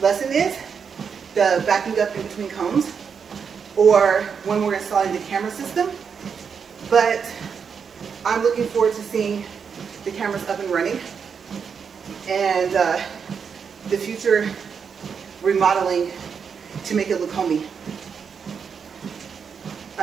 lesson is, the backing up in between cones, or when we're installing the camera system, but I'm looking forward to seeing the cameras up and running and the future remodeling to make it look homey.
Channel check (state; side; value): quieter; left; 6.4 dB